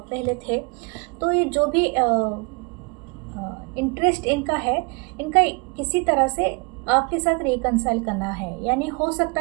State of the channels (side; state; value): left; quieter; 31.3 dB